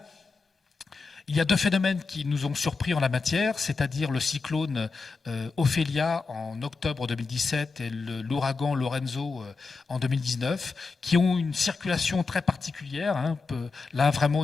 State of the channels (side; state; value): right; quieter; 4.3 dB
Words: il y a deux phénomènes qui nous ont surpris en la matière, c'est-à-dire le cyclone Ophélia en octobre 2017 et l'ouragan Lorenzo en 2019, qui ont une circulation très particulière, hein, là vraiment